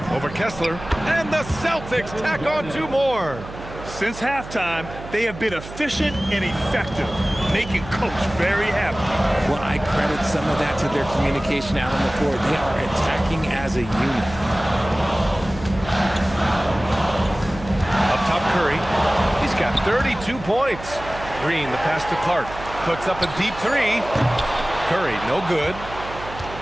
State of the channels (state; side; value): noise; right; hum, 13 dB below the sound